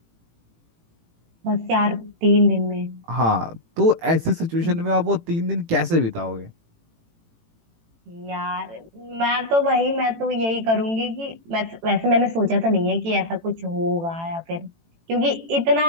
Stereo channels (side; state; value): left; late; 18 ms